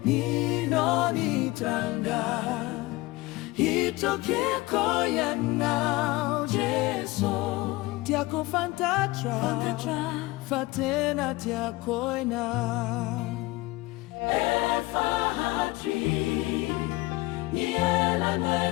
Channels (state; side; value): quieter; right; 20.9 dB